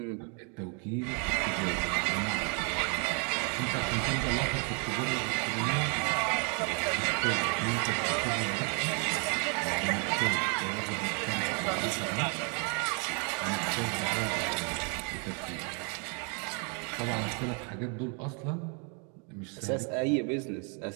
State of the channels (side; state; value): left; quieter; 37.6 dB